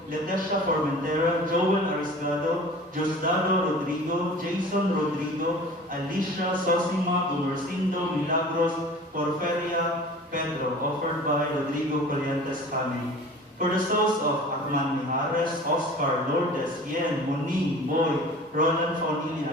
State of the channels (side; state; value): both; normal; correlation 0.42